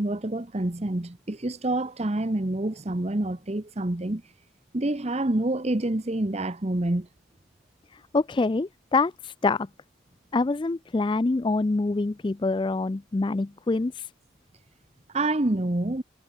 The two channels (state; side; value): normal; both; correlation 0.65